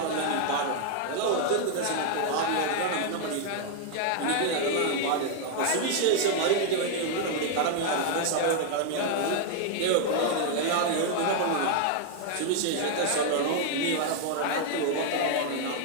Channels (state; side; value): different; both; correlation 0.00